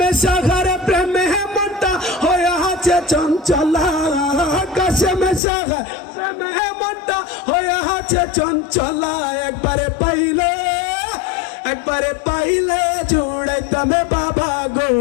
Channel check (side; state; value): right; drops out; at 5.4 s